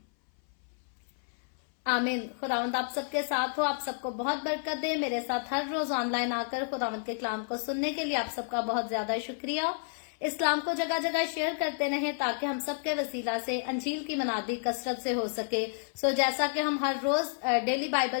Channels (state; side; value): silent; right; 57 dB below the other